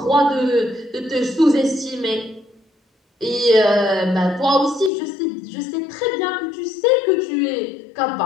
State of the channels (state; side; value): drops out; right; at 4.9 s